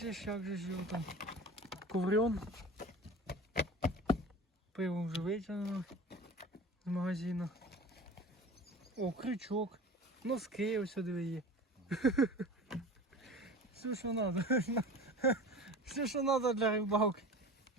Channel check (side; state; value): both; normal; correlation 0.37